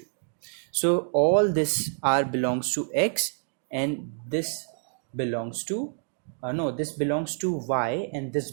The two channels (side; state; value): left; silent; digital silence